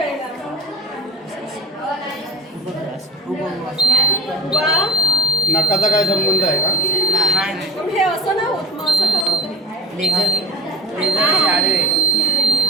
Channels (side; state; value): both; normal; correlation 0.40